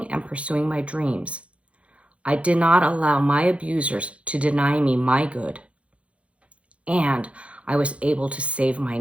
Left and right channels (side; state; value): left; late; 0.062 ms